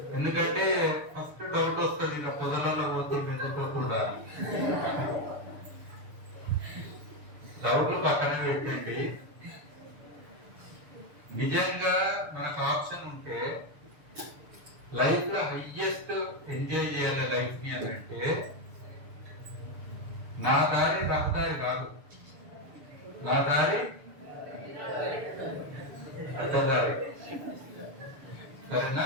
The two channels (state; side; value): late; left; 6.8 ms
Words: ఎందుకంటే ఫస్ట్ డౌట్ వస్తుంది, ఇలా పొదలలో పోతుంది ఎందుకోకుండా. డౌట్లు పక్కన పెట్టండి. నిజంగా మనకు ఆప్షన్ ఉంటే లైఫ్ లో హైయెస్ట్ ఎంజాయ్ చేయాలి లైఫ్ ని అని అంటే, నా దారి రహదారి కాదు, నా దారి అడ్డదారి. సరేనా?